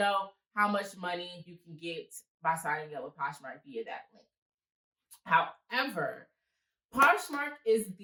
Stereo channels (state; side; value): identical; both; correlation 1.00